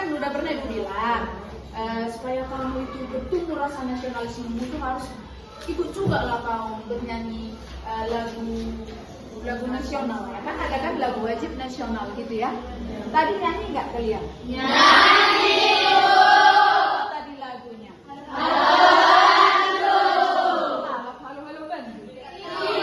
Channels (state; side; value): identical; both; correlation 1.00